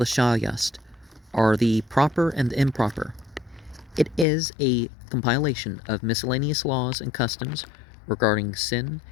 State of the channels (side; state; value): right; drops out; at 4.2 s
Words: Yast, or the Proper and Improper. It is a compilation of miscellaneous laws and customs regarding sin